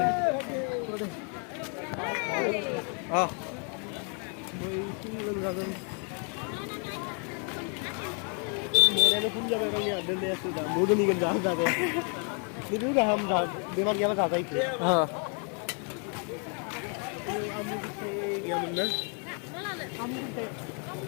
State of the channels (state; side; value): quieter; right; 39.7 dB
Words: मोरानो फुल जाबाय गावनि दोननायासो दा मोदोमनिगोन जादे बिदि गाहाम दा बेमार गैयाबा जाजायो आमु फिथाइ गैयामोन ना आमु फिथाइ